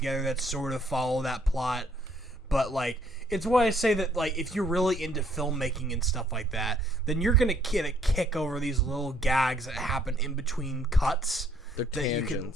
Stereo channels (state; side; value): normal; both; correlation 0.65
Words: that sort of follow that plot. But like it's why I say that like if you're really into filmmaking and stuff like that, then you're gonna get a kick over these little gags that happen in between cuts. They're that you can-